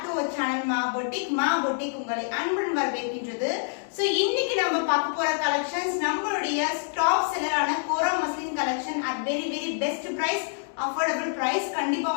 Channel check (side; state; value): right; silent; digital silence